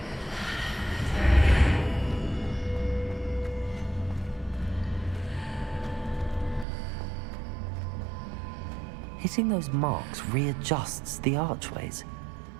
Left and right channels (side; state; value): left; drops out; at 6.7 s